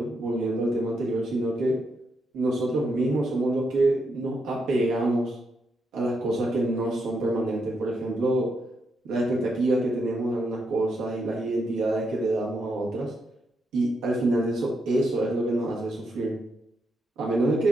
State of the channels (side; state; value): both; normal; correlation 0.81